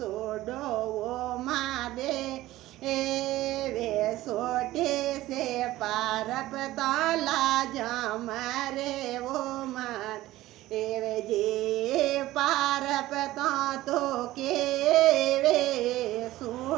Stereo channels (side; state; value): left; quieter; 16.3 dB